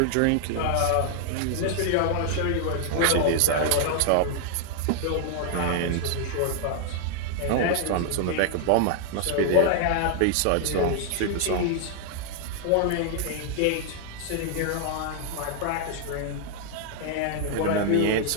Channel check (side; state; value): both; different; correlation 0.00